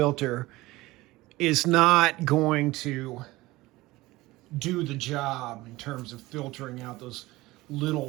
is not going to do the job in terms of filtering out those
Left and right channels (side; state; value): left; quieter; 19.5 dB